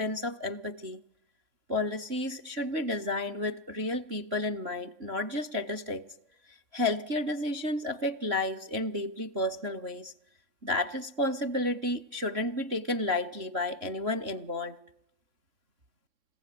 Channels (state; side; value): late; left; 3.6 ms